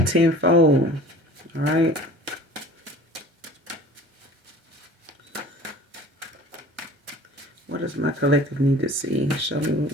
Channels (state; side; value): normal; both; correlation 0.45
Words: All right. What does my collective need to see? Show me what